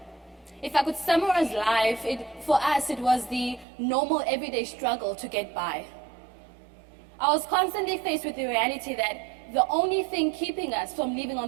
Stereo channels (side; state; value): left; drops out; at 3.7 s